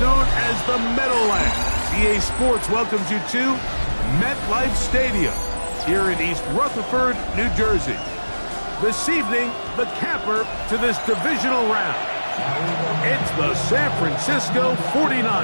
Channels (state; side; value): inverted; both; correlation -1.00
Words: as the Meadowlands, EA Sports welcomes you to MetLife Stadium here in East Rutherford, New Jersey. This evening, the camper to this divisional round. It's the San Francisco